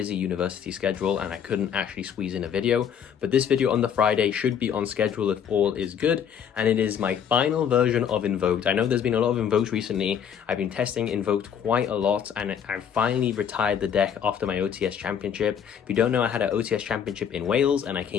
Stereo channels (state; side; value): quieter; right; 8.3 dB